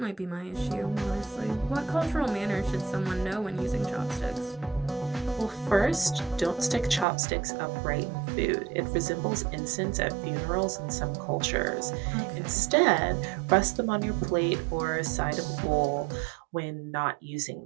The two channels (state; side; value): drops out; left; at 7.1 s